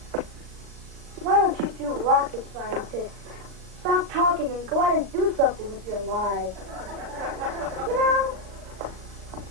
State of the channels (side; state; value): left; late; 36 ms